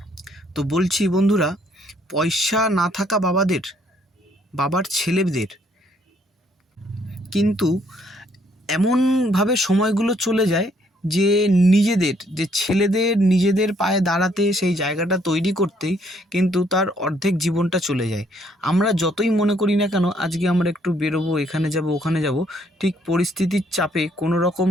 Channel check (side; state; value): both; normal; correlation 0.67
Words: তো বলছি বন্ধুরা, পয়সা না থাকা বাবার ছেলেদের কিন্তু এমনভাবে সময়গুলো চলে যায় যে নিজেদের পায়ে দাঁড়াতে, সেই জায়গাটা তৈরি করতেই কিন্তু তার অর্ধেক জীবনটা চলে যায়। আমরা যতই মনে করি না কেন আজকে আমরা একটু বেরোবো, এখানে যাব ওখানে যাব, ঠিক পরিস্থিতির চাপে কোনো রকম